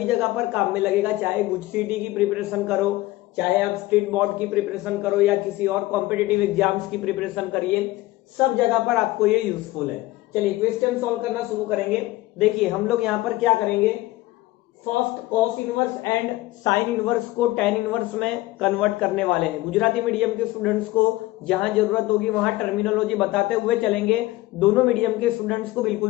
जगह पर काम में लगेगा, चाहे गुजसीटी की प्रिपरेशन करो, चाहे आप स्टेट बोर्ड की प्रिपरेशन करो या किसी और कॉम्पिटिटिव एग्जाम्स की प्रिपरेशन करिए, सब जगह पर आपको ये यूजफुल है। चलिए क्वेश्चन सॉल्व करना शुरू करेंगे। देखिए हम लोग यहाँ पर क्या करेंगे, first cos inverse and sine inverse को टेन इनवर्स में कन्वर्ट करने वाले हैं। गुजराती मीडियम के स्टूडेंट्स को जहां जरूरत होगी वहां टर्मिनोलॉजी बताते हुए चलेंगे, दोनों मीडियम के स्टूडेंट्स को बिल्कुल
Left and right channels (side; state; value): right; quieter; 18.3 dB